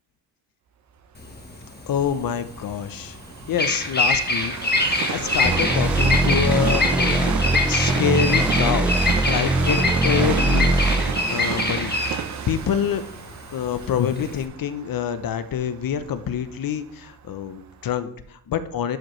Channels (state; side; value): normal; both; correlation 0.35